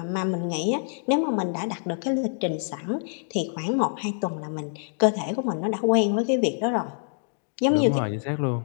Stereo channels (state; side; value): silent; right; digital silence